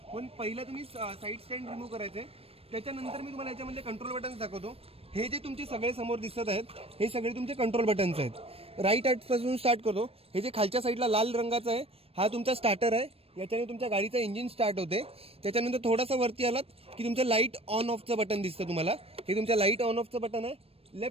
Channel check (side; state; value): left; late; 0.28 ms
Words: पण पहिलं तुम्ही साईड स्टँड रिमूव्ह करायचे. त्याच्यानंतर मी तुम्हाला याच्यामध्ये कंट्रोल बटन्स दाखवतो. हे जे तुमचे सगळे समोर दिसत आहेत हे सगळे तुमचे कंट्रोल बटन्स आहेत. राईट पासून स्टार्ट करतो. हे जे खालच्या साईडला लाल रंगाचा आहे हा तुमचा स्टार्टर आहे, याच्याने तुमच्या गाडीचं इंजिन स्टार्ट होते. त्याच्यानंतर थोडासा वरती आलात की तुमचं लाईट ऑन ऑफचं बटन दिसतं तुम्हाला. हे तुमच्या लाईट ऑन ऑफचं बटन आहे.